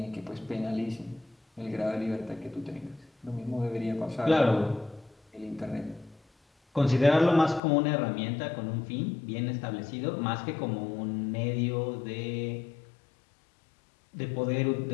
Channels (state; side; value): drops out; right; at 7.6 s